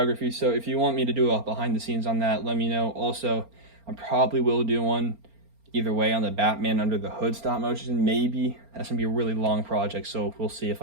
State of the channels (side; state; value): left; late; 4.3 ms